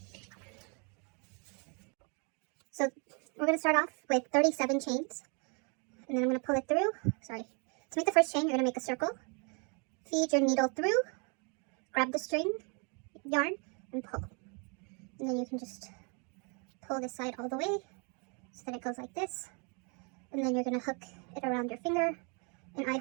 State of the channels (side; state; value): left; quieter; 35.1 dB